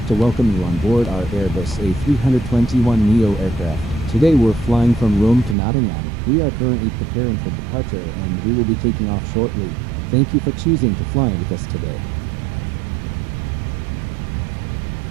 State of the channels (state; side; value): drops out; left; at 5.6 s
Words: to welcome you on board our Airbus A321neo aircraft. Today we're flying from Rome to Nottingham. We are currently preparing for departure and we will be taking off shortly. Thank you for choosing to fly with us today.